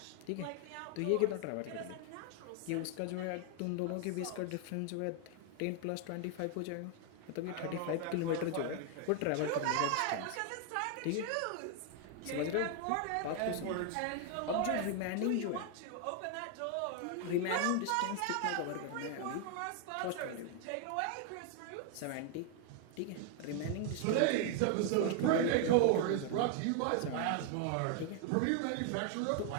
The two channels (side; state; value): both; different; correlation 0.00